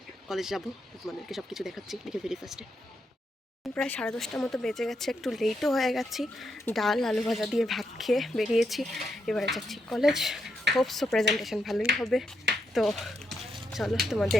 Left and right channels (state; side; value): normal; both; correlation 0.81